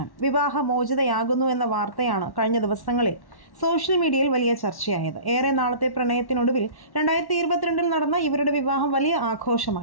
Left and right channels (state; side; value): late; right; 1.1 ms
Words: വിവാഹമോചിതയാകുന്നു എന്ന വാർത്തയാണ് കഴിഞ്ഞ ദിവസങ്ങളിൽ സോഷ്യൽ മീഡിയയിൽ വലിയ ചർച്ചയായത്. ഏറെ നാളത്തെ പ്രണയത്തിനൊടുവിൽ 2022 നടന്ന ഇവരുടെ വിവാഹം വലിയ